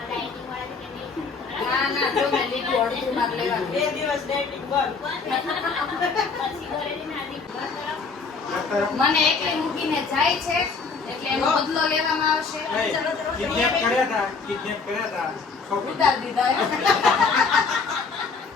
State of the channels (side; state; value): right; quieter; 4.8 dB